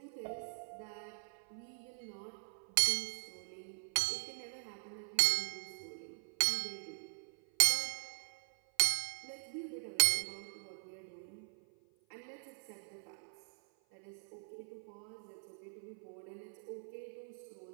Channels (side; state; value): left; silent; 51 dB below the other